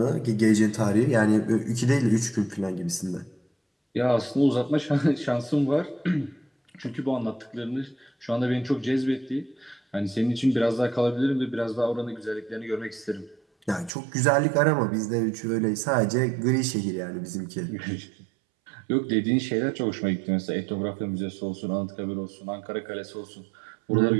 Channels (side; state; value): left; drops out; at 13.9 s